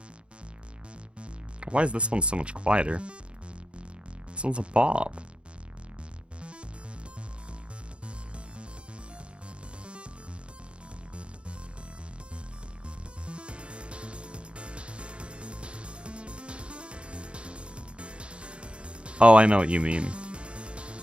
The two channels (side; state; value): left; late; 0.057 ms